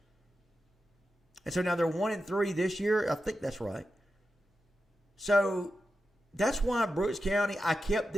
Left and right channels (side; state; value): both; normal; correlation 0.90